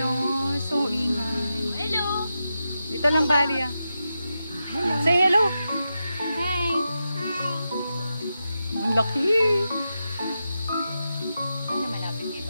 So ingay. Hello! Dito lang, Bali, ah. Say hello. Hi! Ang laki. Ano malapit kay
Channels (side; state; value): both; inverted; correlation -0.88